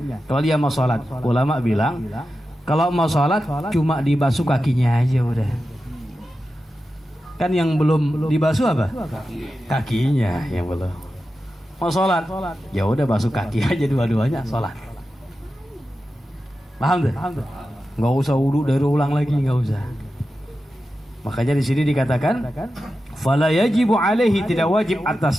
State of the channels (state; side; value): normal; both; correlation 0.92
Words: Kalau dia mau sholat, ulama bilang kalau mau sholat cuma dibasuh kakinya aja udah. Kan yang belum dibasuh apa? Kakinya yang belum. Mau sholat, ya udah basuh kaki aja dua-duanya sholat. Paham tuh? Nggak usah wudu dari ulang lagi, nggak usah. Makanya di sini dikatakan fala yajibu alaihi, tidak wajib